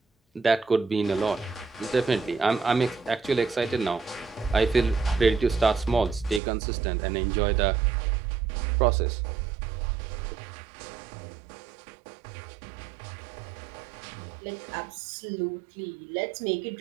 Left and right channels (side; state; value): left; drops out; at 6.4 s